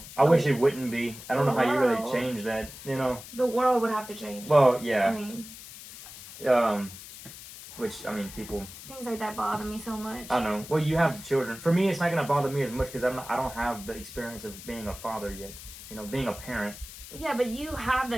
I wish it wouldn't be. I don't know how you really change that. You know, the world would have to change. Well, yeah. I mean, which I mean, people. Things like that bother me so much. I know. Well, you have children. For me, it's not gonna bother me as much because I don't have the experience of being a father yet. You know, being a parent. Yeah, but you have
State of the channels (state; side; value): noise; left; hiss, 14 dB below the sound